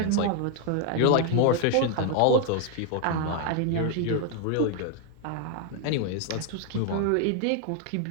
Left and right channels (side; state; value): both; different; correlation 0.00